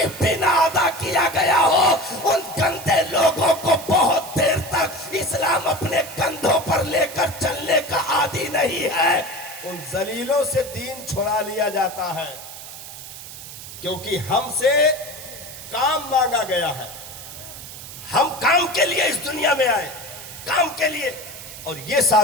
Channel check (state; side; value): noise; right; hiss, 13 dB below the sound